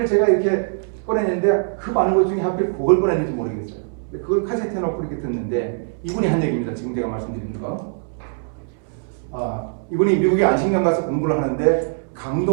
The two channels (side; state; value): left; silent; 64 dB below the other